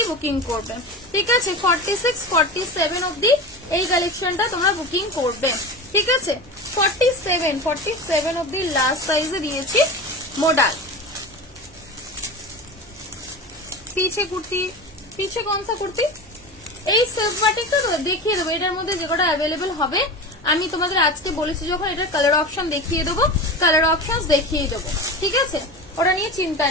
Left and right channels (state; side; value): normal; both; correlation 0.28